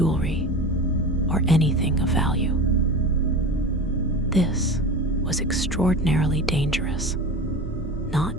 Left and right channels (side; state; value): both; normal; correlation 0.30